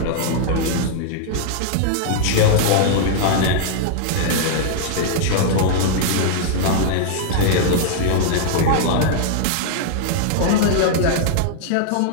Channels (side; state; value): both; different; correlation -0.01